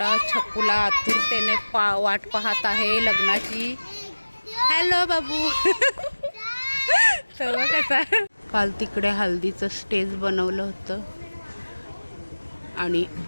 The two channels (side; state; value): both; inverted; correlation -1.00